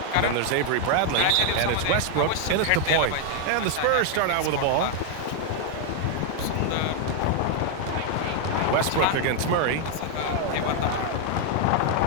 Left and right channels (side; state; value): both; different; correlation 0.00